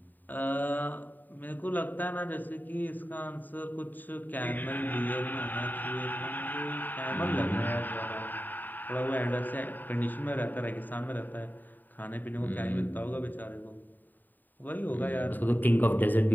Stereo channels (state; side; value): late; right; 0.089 ms